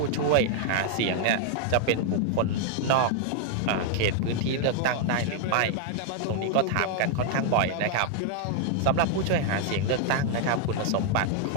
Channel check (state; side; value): different; both; correlation 0.00